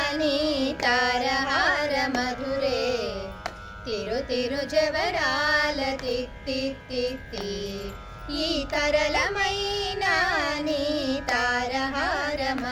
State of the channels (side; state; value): both; identical; correlation 1.00